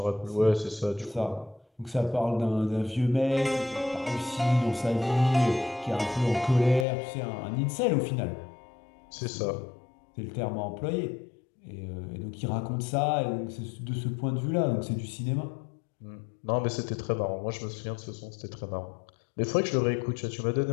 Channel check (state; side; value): drops out; right; at 6.9 s